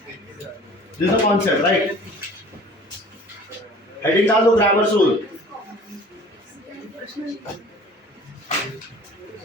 this the concept right heading डाल दो grammars rule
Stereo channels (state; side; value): normal; both; correlation 0.46